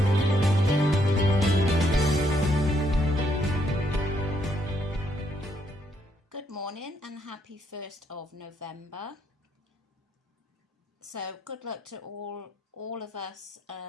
morning and happy 1st of November. So good luck to all of us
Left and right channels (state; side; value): normal; both; correlation 0.73